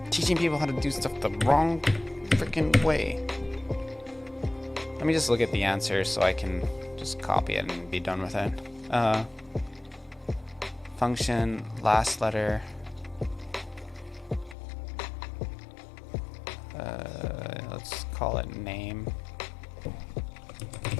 Teaching people how to do stuff the wrong freaking way. Let me just look at the answer so I can just copy it and be done with it. Function, last letter. Let's call call it name.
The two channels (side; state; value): right; drops out; at 14.6 s